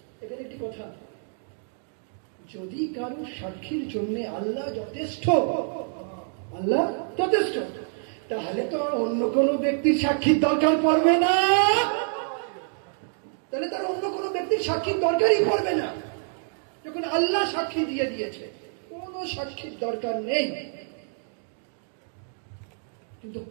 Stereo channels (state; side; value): silent; left; 60 dB below the other